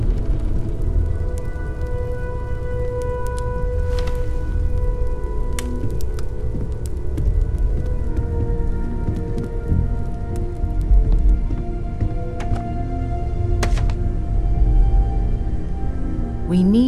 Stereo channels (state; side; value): identical; both; correlation 1.00